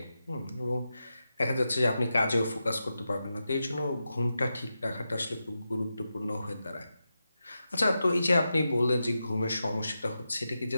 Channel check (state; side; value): inverted; both; correlation -0.89